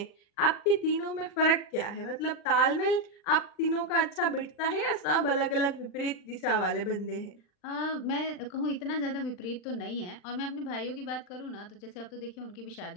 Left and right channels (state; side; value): late; right; 39 ms